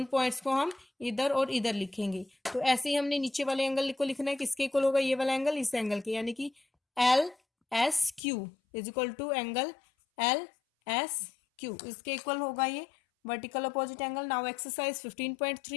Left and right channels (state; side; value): drops out; right; at 8.2 s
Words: पॉइंट्स को हम इधर और इधर लिखेंगे। तो ऐसे ही हमने नीचे वाले एंगल को लिखना है। किसके इक्वल होगा? ये वाला एंगल इस एंगल के, यानी कि LSQ is equal to angle LSQ। इसके इक्वल होगा ये vertical opposite angle. Now exercise